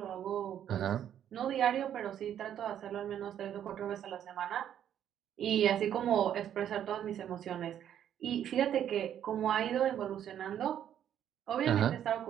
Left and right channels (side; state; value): left; quieter; 10.1 dB